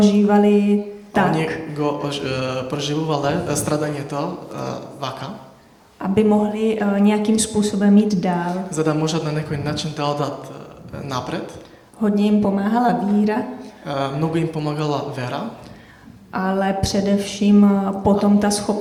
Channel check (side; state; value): both; identical; correlation 1.00